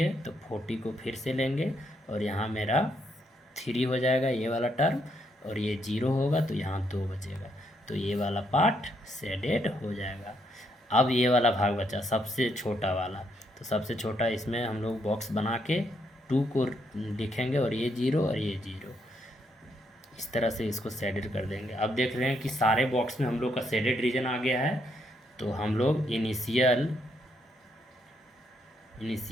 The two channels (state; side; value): normal; both; correlation 0.75